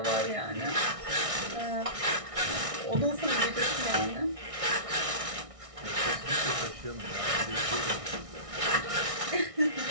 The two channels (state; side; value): late; left; 1.6 ms